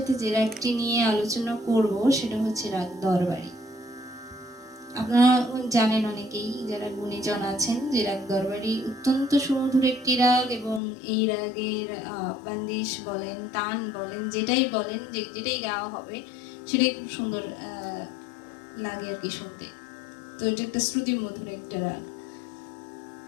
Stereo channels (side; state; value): right; drops out; at 10.8 s